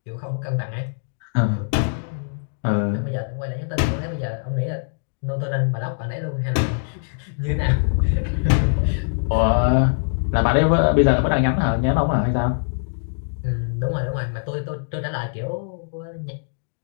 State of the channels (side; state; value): right; silent; digital silence